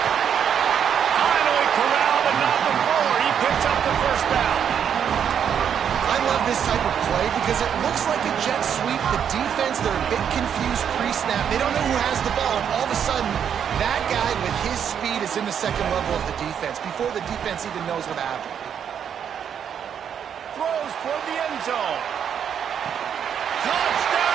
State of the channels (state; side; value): quieter; left; 8.3 dB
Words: Finally corralled and not before. He picks up the first down. I love this type of play because it looks like a jet sweep. The defense, they're a bit confused pre-snap. They don't know who has the ball. And all of a sudden, that guy with his speed is in the second level of the defense before the defense even knows what happened. Throws toward the end zone.